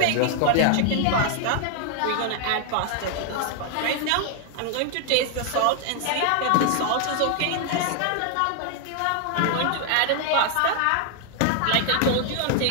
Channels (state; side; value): different; both; correlation 0.00